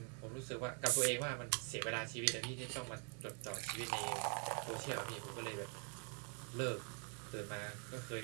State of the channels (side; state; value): left; quieter; 38.7 dB